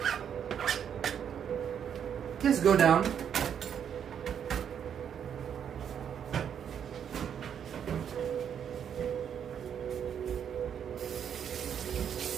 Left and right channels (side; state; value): left; quieter; 8.4 dB